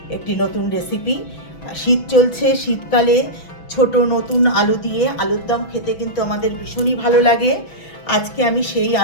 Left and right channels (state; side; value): late; right; 6.1 ms